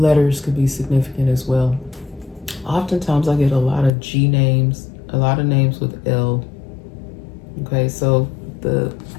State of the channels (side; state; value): right; drops out; at 3.9 s